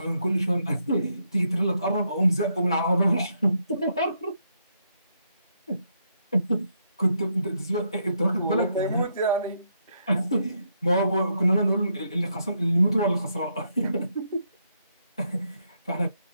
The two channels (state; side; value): inverted; both; correlation -0.77